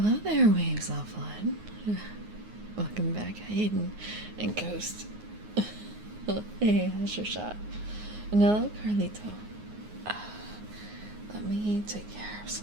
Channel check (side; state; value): left; late; 9.6 ms